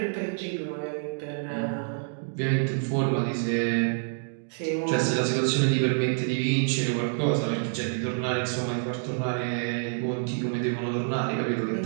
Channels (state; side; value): silent; left; digital silence